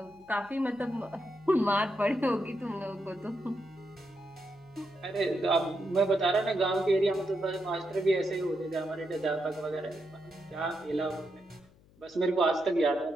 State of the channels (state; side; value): noise; left; hum, 28 dB below the sound